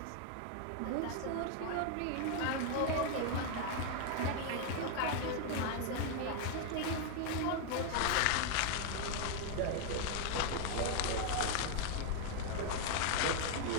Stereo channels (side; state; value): both; different; correlation 0.00